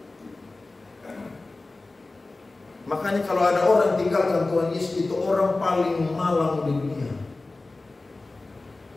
Makanya kalau ada orang tinggalkan Tuhan Yesus, itu orang paling malang di dunia.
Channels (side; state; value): right; quieter; 3.2 dB